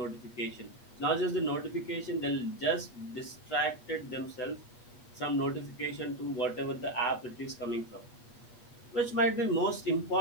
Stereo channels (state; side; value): late; right; 8.4 ms